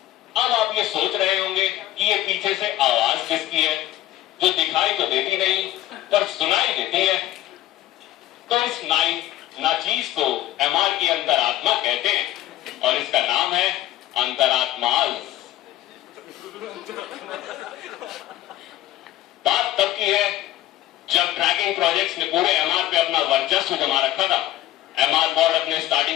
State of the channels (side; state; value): right; quieter; 14.4 dB